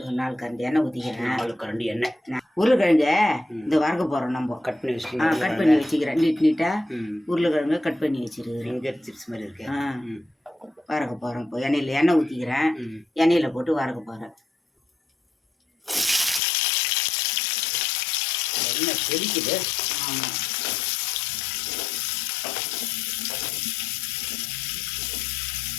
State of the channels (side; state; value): right; drops out; at 16.4 s